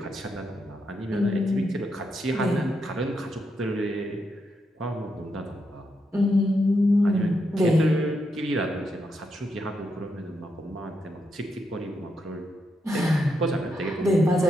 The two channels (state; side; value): normal; both; correlation 0.82